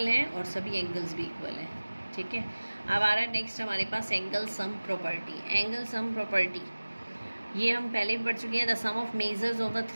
हैं और सभी एंगल्स भी इक्वल हैं, ठीक है। अब आ रहा है नेक्स्ट हमारे पास angle sum property. Angle sum property ये हम पहले भी पढ़ चुके हैं। The sum of measures of the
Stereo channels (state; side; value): inverted; both; correlation -1.00